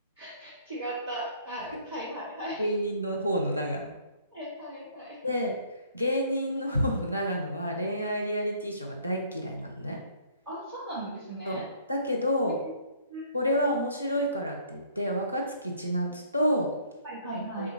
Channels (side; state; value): both; inverted; correlation -0.59